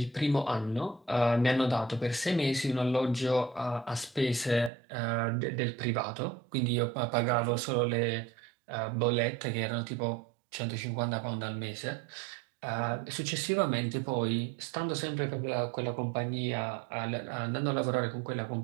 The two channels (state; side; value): drops out; left; at 4.7 s